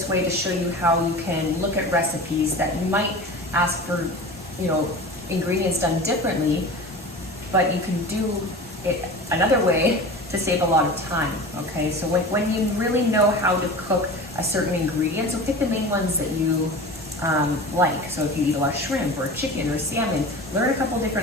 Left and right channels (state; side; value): normal; both; correlation 0.34